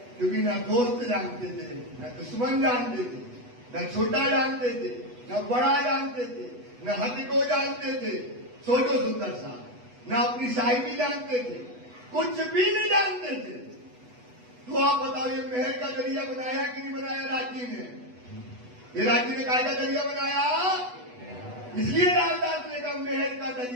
क्योंकि ना दोस्त जानते थे, न दुश्मन जानते थे, न छोटा जानते थे, न बड़ा जानते थे, न हद को जानते थे। सोचो सुंदर सा, न अपनी साहिबी जानते थे, कुछ भी नहीं जानते थे। तो आप बताओ, ये महल का दरिया बनाया कि नहीं बनाया राज्य ने? ये राज्य ने काय का दरिया बनाया? इसलिए रामदास ने कहा महल का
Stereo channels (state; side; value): late; left; 8.1 ms